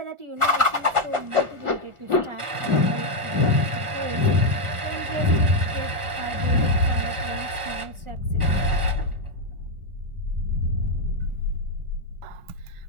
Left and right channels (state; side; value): late; left; 1.4 ms